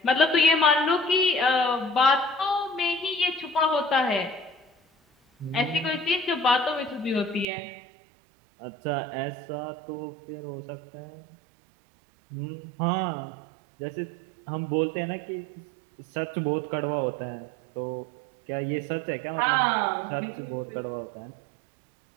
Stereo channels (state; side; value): drops out; left; at 7.5 s